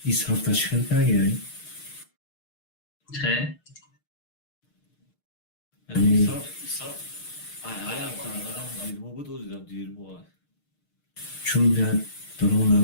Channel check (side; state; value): right; late; 6.6 ms